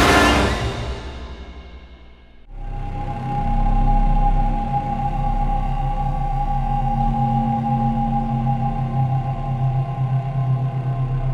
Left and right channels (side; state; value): both; identical; correlation 1.00